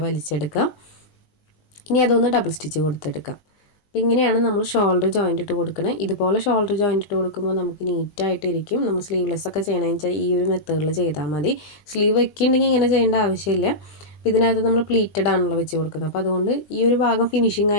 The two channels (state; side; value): late; right; 21 ms